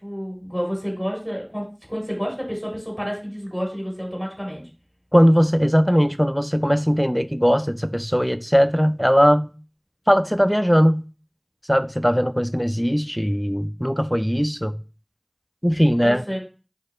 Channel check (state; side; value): identical; both; correlation 1.00